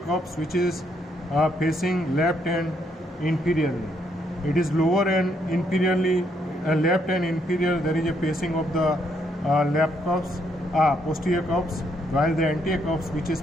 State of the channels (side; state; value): both; normal; correlation 0.73